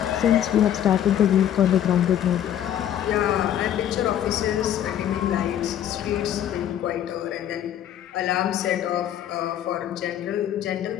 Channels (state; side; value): quieter; right; 10.6 dB